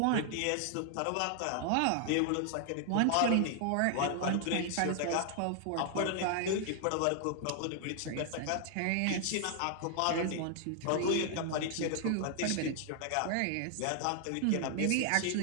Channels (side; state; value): both; different; correlation 0.00